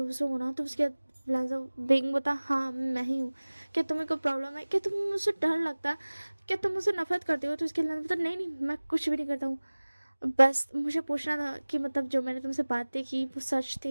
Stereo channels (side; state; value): both; inverted; correlation -1.00